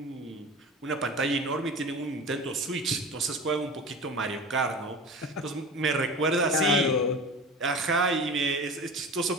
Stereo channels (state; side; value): normal; both; correlation 0.34